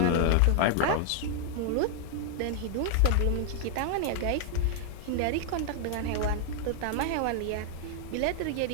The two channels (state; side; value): different; both; correlation 0.00